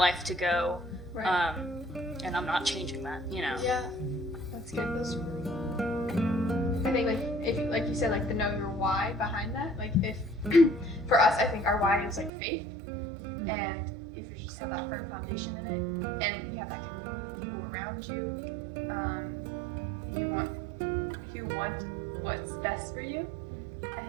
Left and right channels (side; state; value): left; drops out; at 12.3 s